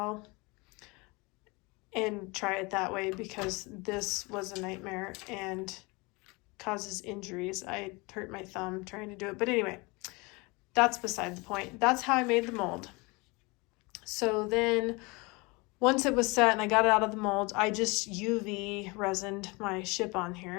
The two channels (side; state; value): right; quieter; 26.4 dB